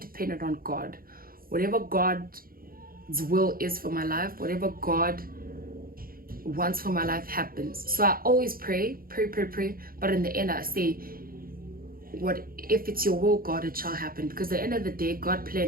on God. Whatever God's will is for my life, whatever God wants for my life happens. So I always pray, but in the end I say, what if it's your will, God, it shall happen, because at the end of the day God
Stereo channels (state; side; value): late; left; 0.42 ms